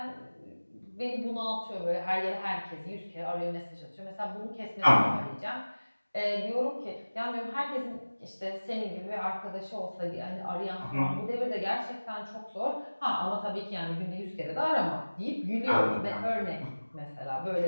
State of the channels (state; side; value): inverted; both; correlation -1.00